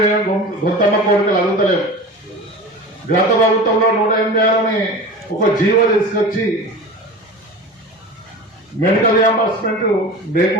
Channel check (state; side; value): normal; both; correlation 0.33